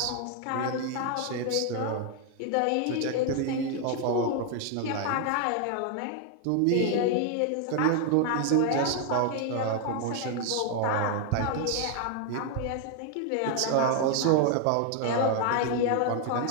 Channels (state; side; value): different; both; correlation 0.00